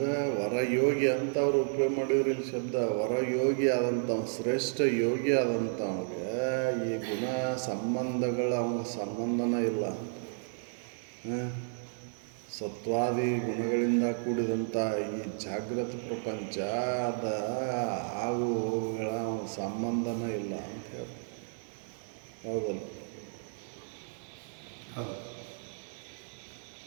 ವರಯೋಗಿ ಅಂತ ಅವ್ರು ಉಪಯೋಗ ಮಾಡಿದ್ರು ಇಲ್ಲಿ ಶಬ್ದ. ವರಯೋಗಿ ಆದಂಥ ಶ್ರೇಷ್ಠ ಯೋಗಿ ಆದಂಥವ್ಗೆ ಈ ಗುಣ ಸಂಬಂಧಗಳ ಅವನಿಗೆ ಸಂಬಂಧನೇ ಇಲ್ಲ. ಸತ್ವಾದಿ ಗುಣಗಳಿಂದ ಕೂಡಿದಂಥ ಈ ಜಾಗೃತ ಪ್ರಪಂಚ ಅದ ಆಗು ಹೋಗುಗಳ ಅವನ ಸಂಬಂಧನೇ ಇಲ್ಲ ಅಂತ ಹೇಳಿ. ಹೌದಲ್ಲ?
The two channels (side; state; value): left; silent; digital silence